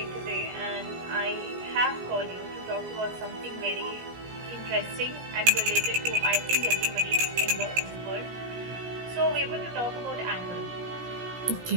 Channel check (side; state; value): left; late; 17 ms